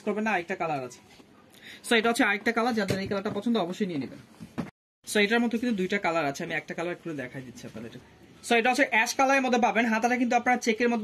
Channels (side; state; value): both; identical; correlation 1.00